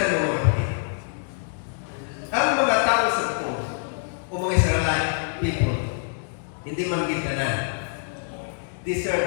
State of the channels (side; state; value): right; silent; digital silence